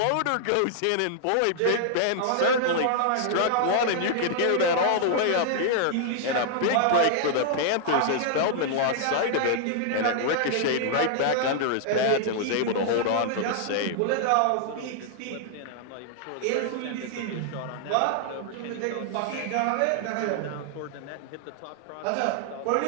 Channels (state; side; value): different; both; correlation 0.00